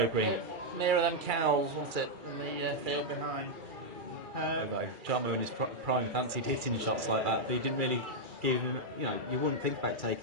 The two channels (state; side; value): late; left; 2.3 ms